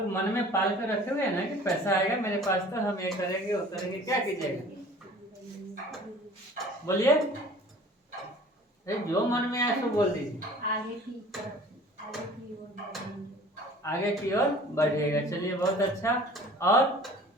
मन में पाल कर रखे हुए हैं ना कि पैसा आएगा मेरे पास तो हम ये करेंगे वो करेंगे। क्या कीजिएगा? बोलिए, जो मन में आए तो बोल दीजिए। आगे की ओर बढ़िएगा। चलिए, बहुत अच्छा। और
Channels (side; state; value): both; normal; correlation 0.47